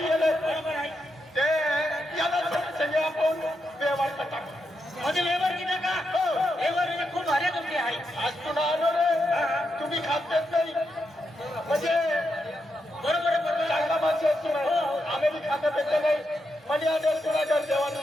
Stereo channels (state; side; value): normal; both; correlation 0.84